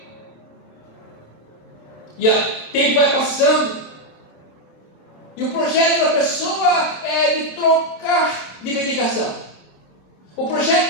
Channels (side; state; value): right; late; 27 ms